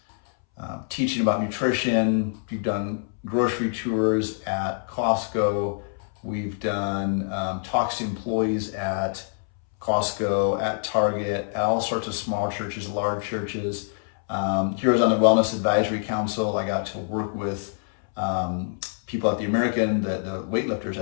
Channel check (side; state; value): right; silent; 61 dB below the other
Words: teaching about nutrition. We've done grocery tours at Costco. We've done talks to employees at Costco, at Target, at all sorts of small churches, large churches. Here I was on the Wellness Advisory Council. I got to work with people at the weightlifters